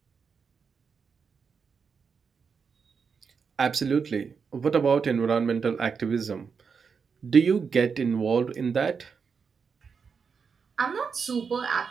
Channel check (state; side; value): quieter; left; 5.8 dB